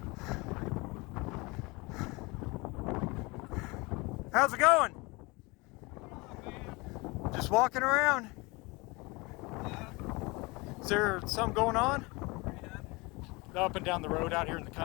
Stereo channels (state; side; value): quieter; right; 25.4 dB